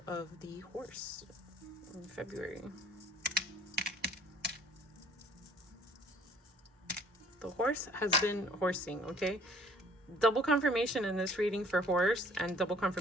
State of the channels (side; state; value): both; normal; correlation 0.55